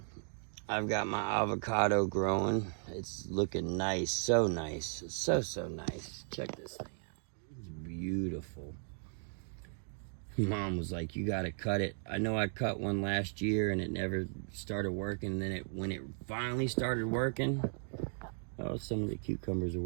I've got my avocado growing. It's looking nice, so nice. So nice. Check this thing out. It's beautiful. Mom was like, you gotta cut it. I know I cut one last year and it never started working. And then when it finally started working, oh, some of the cucumbers are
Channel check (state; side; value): silent; left; 54 dB below the other